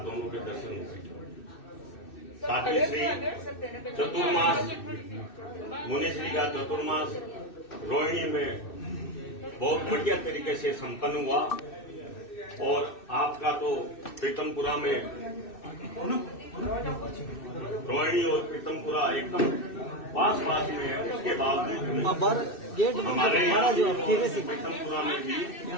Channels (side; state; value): right; late; 2.6 ms